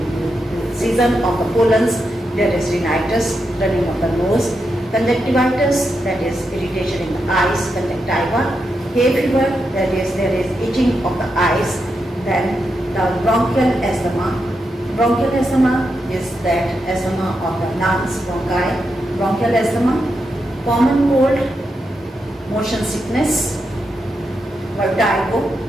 season of the pollens, there is rhinitis, running of the nose. Conjunctivitis, that is irritation in the eyes, conjunctiva. Hay fever, that is there is itching of the eyes. Then the bronchial asthma. Bronchial asthma is that asthma of the lungs, bronchi. Bronchial asthma. Common cold, motion sickness, vertigo.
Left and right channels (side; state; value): both; normal; correlation 0.85